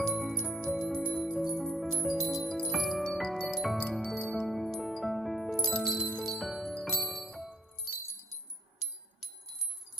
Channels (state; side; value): normal; both; correlation 0.63